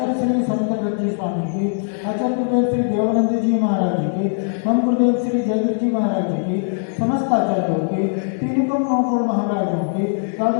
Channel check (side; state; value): right; silent; digital silence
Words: श्री संत जी स्वामी की, आचार्य गुरुदेव श्री देवानंद जी महाराज जी की, हम गुरुदेव श्री जयवीर जी महाराज जी की, समस्त आचार्यों की, तीन करोड़ 9 करोड़ महाराजों की,